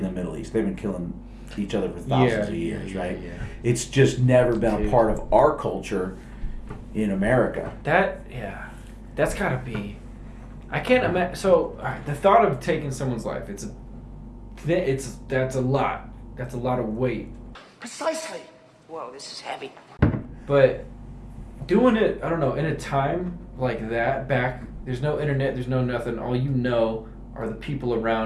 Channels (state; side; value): identical; both; correlation 1.00